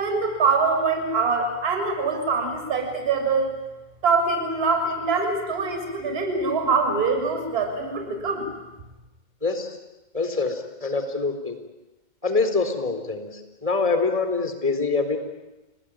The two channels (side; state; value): left; late; 2.1 ms